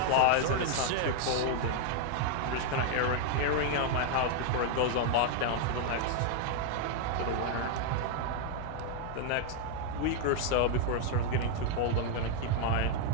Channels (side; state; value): both; different; correlation 0.00